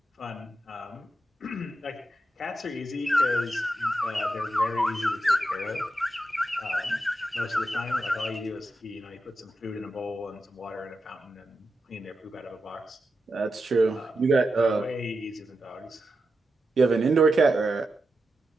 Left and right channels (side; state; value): both; normal; correlation 0.88